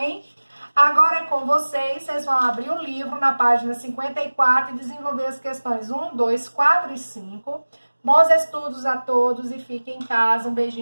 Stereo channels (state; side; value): inverted; both; correlation -1.00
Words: Agora é com vocês vão abrir o livro na página 54 e desenvolver as questões 1, 2, 4 e 5. Bons estudos a todos e fiquem em casa. Um